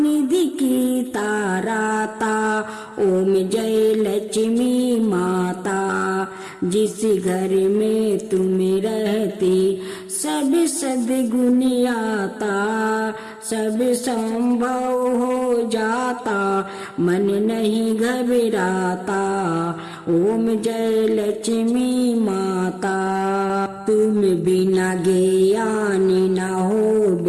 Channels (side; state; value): both; identical; correlation 1.00